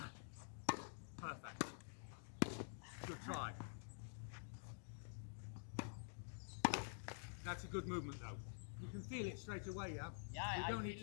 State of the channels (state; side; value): silent; right; digital silence